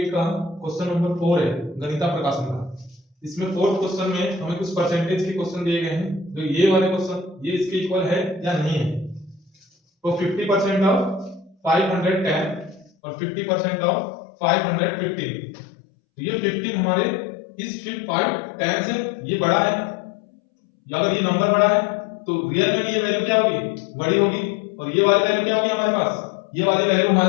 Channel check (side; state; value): right; drops out; at 12.9 s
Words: का क्वेश्चन नंबर 4 है गणिता प्रकाशन का। इसमें फोर्थ क्वेश्चन में हमें कुछ परसेंटेज के क्वेश्चन दिए गए हैं। जो ये वाले क्वेश्चन ये इसके इक्वल है या नहीं है। तो 50% ऑफ 510 और 50% ऑफ 515। तो ये 15 हमारे इस 510 से ये बड़ा है, या अगर ये नंबर बड़ा है तो रियल में भी ये वैल्यू क्या होगी, बड़ी होगी। और ये वाली वैल्यू क्या होगी हमारे पास, ये वाली वैल्यू